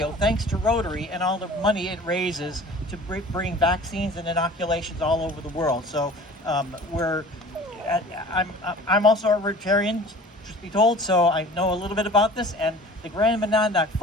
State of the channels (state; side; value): normal; both; correlation 0.44